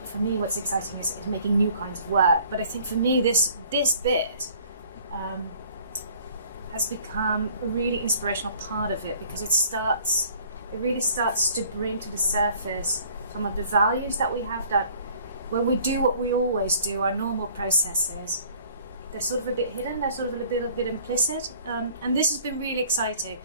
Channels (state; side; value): inverted; both; correlation -0.55